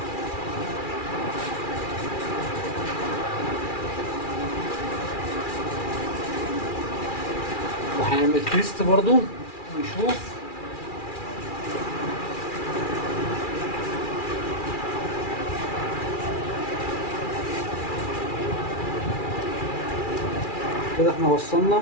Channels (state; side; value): late; right; 2.4 ms